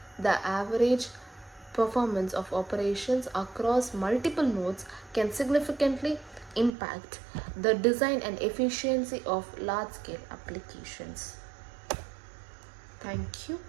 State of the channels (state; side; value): drops out; left; at 6.8 s